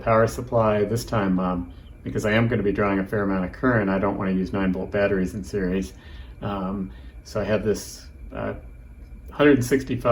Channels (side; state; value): both; identical; correlation 1.00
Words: supply. This time, because I am going to be drawing a fair amount of current, I don't want to use 9-volt batteries in series. So I have this